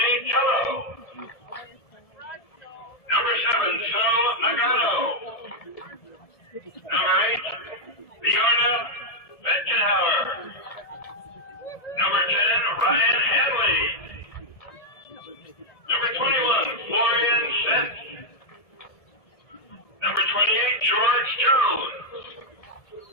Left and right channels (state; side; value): late; right; 1.7 ms